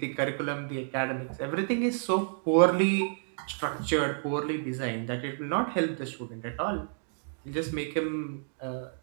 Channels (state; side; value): silent; left; digital silence